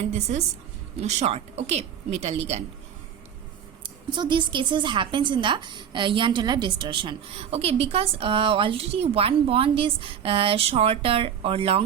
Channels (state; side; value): quieter; left; 8.6 dB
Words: this is short. Okay, metal ligand. So these cases happens in the Jahn-Teller distortion. Okay, because already one bond is shorter or